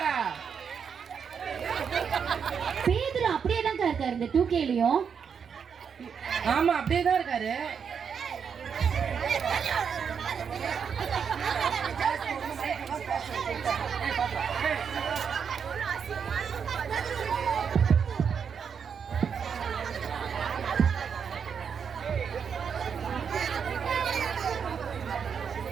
பேதுரு அப்படியே தான் இருக்காரு இந்த 2Kலயும். ஆமா அப்படியே தான் இருக்காரு.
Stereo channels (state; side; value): quieter; left; 6.8 dB